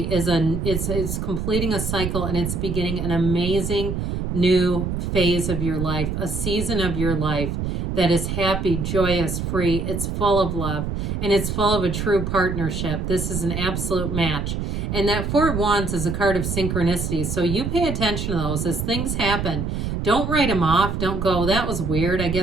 completing a cycle, and it's beginning an amazing new phase of your life, a season of your life that is happy, joyous, free. It's full of love, and it's full of a true partnership. This is an absolute match. And that Four of Wands is a card of synchronicities. So you pay attention to those as things happen. Don't write them off. Don't go, that was weird. I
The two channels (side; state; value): right; noise; rumble, 2 dB below the sound